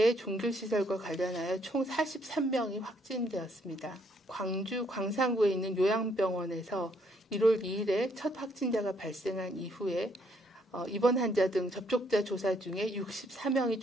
종교시설과 관련하여 총 43명이 확진되었습니다. 광주 광산구에 있는 요양병원에서 1월 2일에 첫 확진자가 발생한 이후에 입원 환자 등 접촉자 조사 중에 64명이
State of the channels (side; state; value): both; normal; correlation 0.69